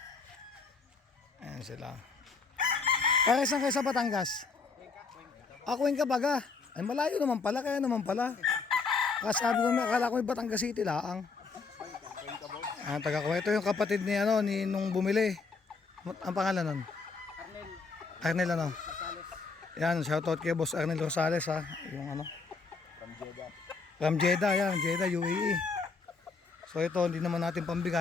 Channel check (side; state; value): right; quieter; 4.5 dB